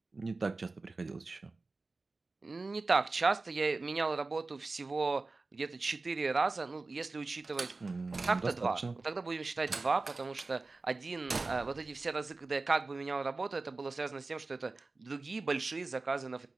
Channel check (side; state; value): left; quieter; 3.6 dB